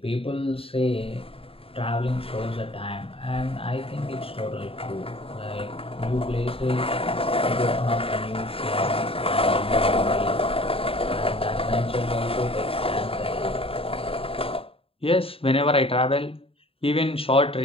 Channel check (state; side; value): late; right; 0.27 ms